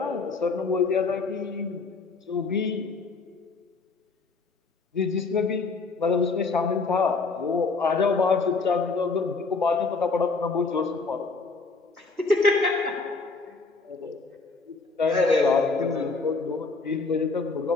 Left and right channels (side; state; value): right; quieter; 4.1 dB